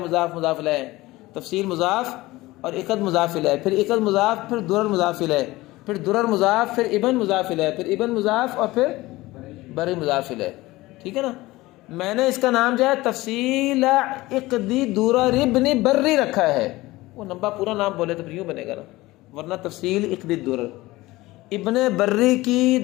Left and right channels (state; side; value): quieter; right; 19.2 dB